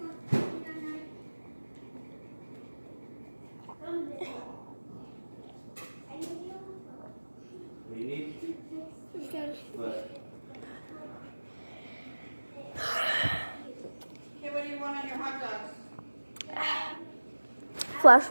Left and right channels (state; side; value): inverted; both; correlation -1.00